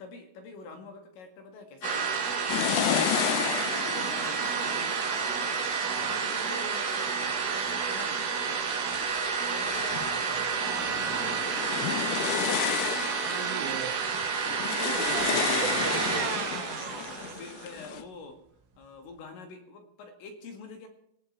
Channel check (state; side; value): late; right; 16 ms